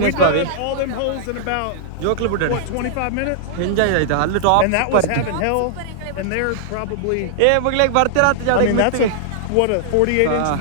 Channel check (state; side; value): different; both; correlation -0.01